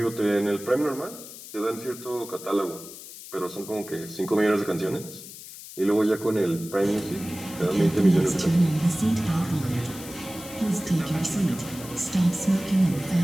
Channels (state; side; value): noise; left; hiss, 14 dB below the sound